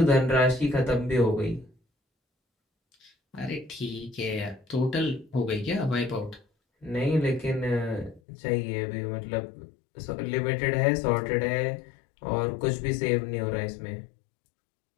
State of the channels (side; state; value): right; drops out; at 8.2 s